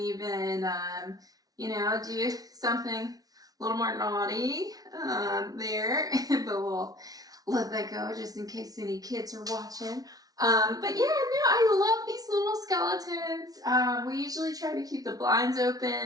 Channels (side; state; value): left; late; 0.18 ms